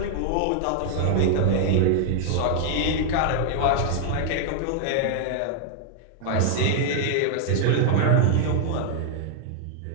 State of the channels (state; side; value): different; both; correlation -0.01